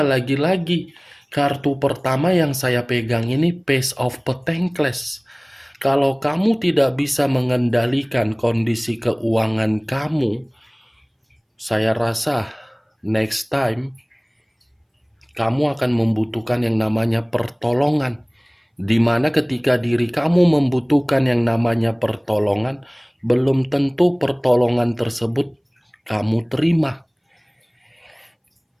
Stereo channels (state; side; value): identical; both; correlation 1.00